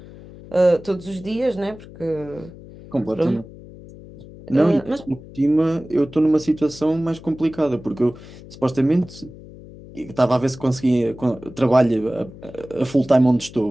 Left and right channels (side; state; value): left; noise; hum, 18 dB below the sound